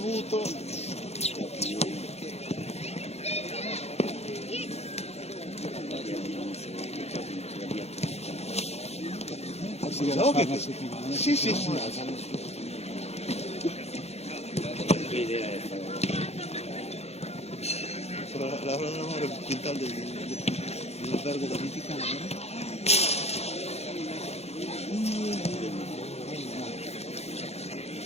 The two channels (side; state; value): right; late; 0.31 ms